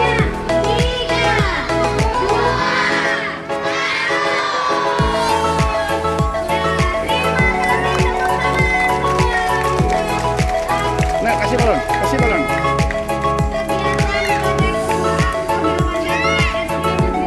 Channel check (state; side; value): identical; both; correlation 1.00